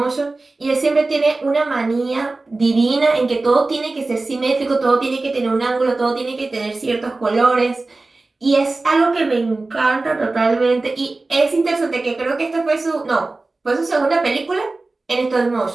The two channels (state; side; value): quieter; left; 3.3 dB